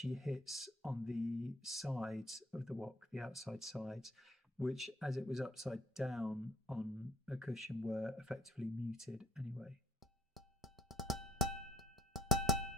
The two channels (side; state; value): both; normal; correlation 0.58